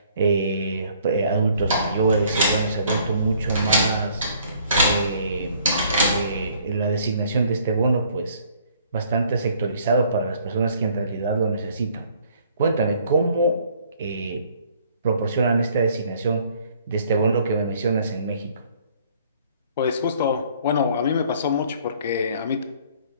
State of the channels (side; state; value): both; inverted; correlation -0.60